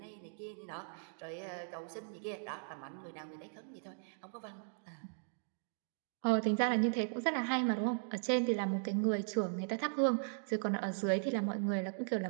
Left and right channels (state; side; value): silent; left; digital silence